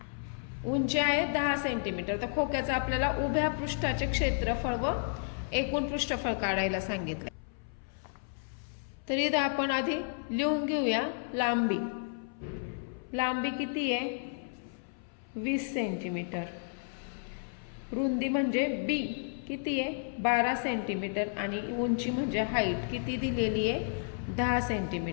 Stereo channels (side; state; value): right; silent; 56 dB below the other